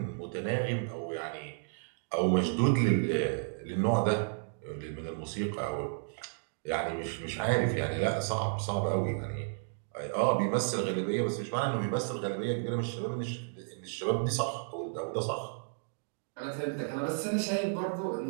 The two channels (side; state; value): left; silent; digital silence